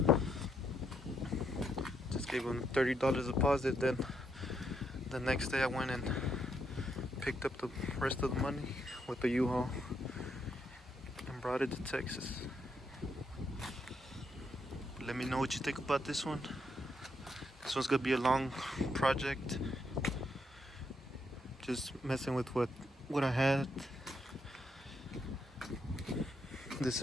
Just gave him $30 deposit. Then the next day I went and picked up the rest of the money with the U-Haul and brought it to Texas. Let me know what you think about this one. This one's gonna be a long project. Just messing with what I had. This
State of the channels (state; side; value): normal; both; correlation 0.77